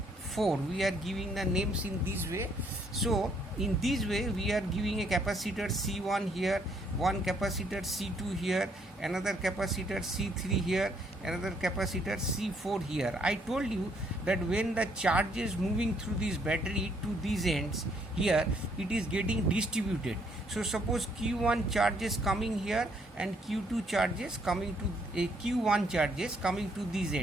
4. We are giving the names in this way. So in this way we are giving a capacitor C1 here, one capacitor C2 here, another capacitor C3 here, another capacitor C4 here. I told you that when the charge is moving through this battery to these ends here, it is getting distributed. So suppose Q1 charges coming here and Q2 charges coming to Q1 charges coming to this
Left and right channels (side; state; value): both; normal; correlation 0.69